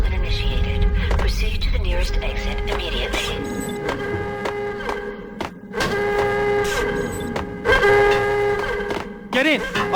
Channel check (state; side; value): identical; both; correlation 1.00